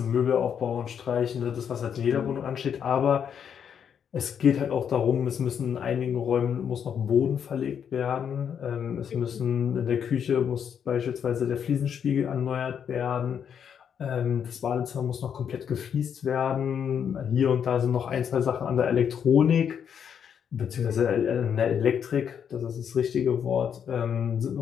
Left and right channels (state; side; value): quieter; right; 7.9 dB